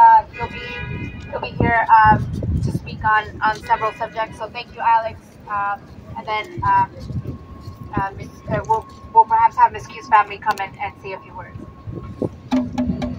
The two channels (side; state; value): both; identical; correlation 1.00